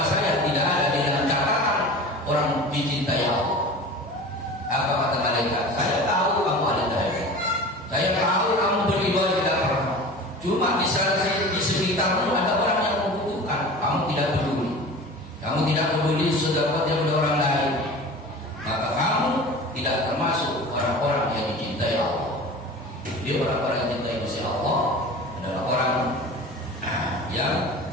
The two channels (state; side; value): normal; both; correlation 0.37